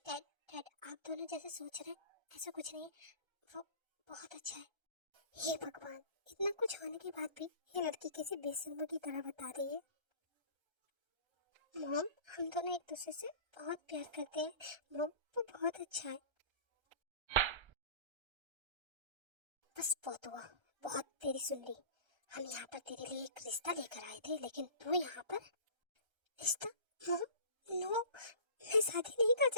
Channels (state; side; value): late; left; 1.3 ms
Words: डैड आप दोनों जैसे सोच रहे हैं ऐसा कुछ नहीं है, वो बहुत अच्छा है। हे भगवान, इतना कुछ होने के बाद भी ये लड़की कैसे बेशर्मों की तरह बता रही है। मॉम हम दोनों एक दूसरे से बहुत प्यार करते हैं मॉम, वो बहुत अच्छा है। बस बहुत हुआ, बहुत तेरी सुन ली। हम यहाँ पर तेरे लिए एक रिश्ता लेकर आए थे, लेकिन तू यहाँ पर रिश्ता? मॉम नो, मैं शादी नहीं कर